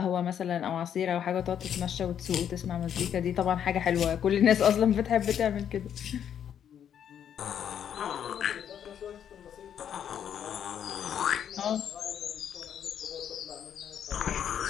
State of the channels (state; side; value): quieter; right; 9.1 dB